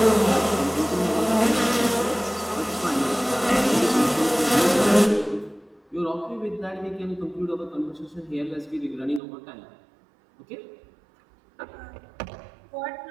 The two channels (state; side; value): drops out; left; at 9.2 s